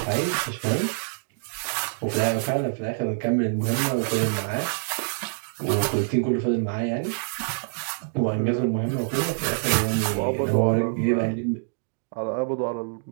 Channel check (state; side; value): silent; left; digital silence